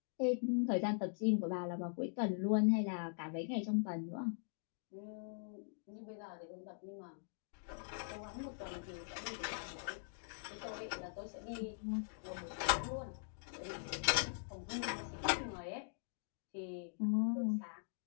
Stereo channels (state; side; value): silent; right; digital silence